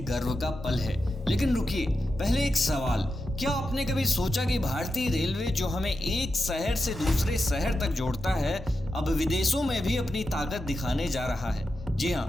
गर्व का पल है। लेकिन रुकिए, पहले एक सवाल। क्या आपने कभी सोचा कि भारतीय रेलवे जो हमें एक शहर से दूसरे शहर तक जोड़ता है, अब विदेशों में भी अपनी ताकत दिखाने जा रहा है? जी हाँ,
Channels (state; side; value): normal; both; correlation 0.89